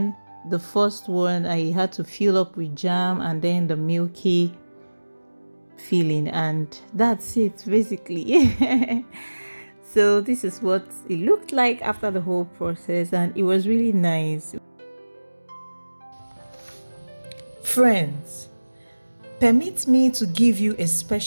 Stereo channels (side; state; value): both; inverted; correlation -1.00